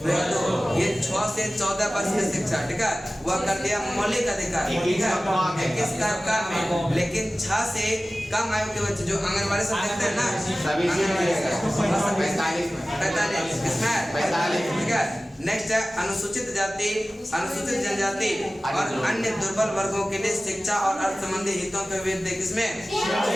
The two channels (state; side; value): normal; both; correlation 0.97